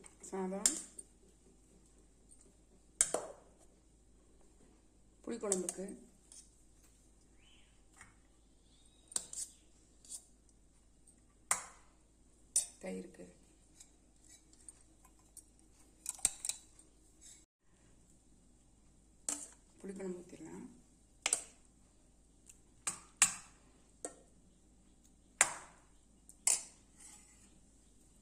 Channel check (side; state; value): both; identical; correlation 1.00